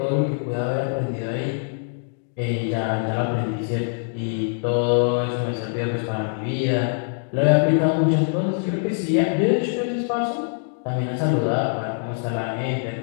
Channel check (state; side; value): silent; right; digital silence